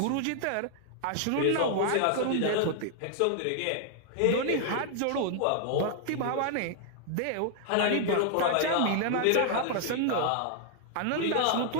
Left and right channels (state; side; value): different; both; correlation 0.00